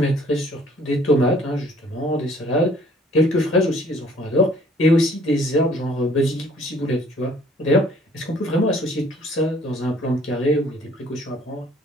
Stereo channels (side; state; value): both; normal; correlation 0.57